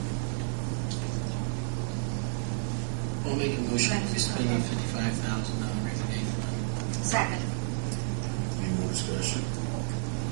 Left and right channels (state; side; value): silent; left; digital silence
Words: I'll make a motion to spend $55,000 rainy day fund. Second. Any more discussion?